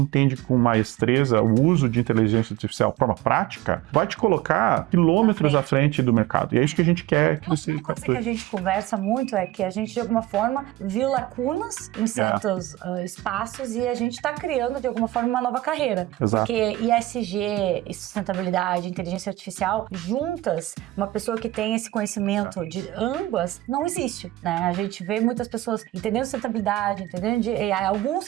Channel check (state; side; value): quieter; left; 16.9 dB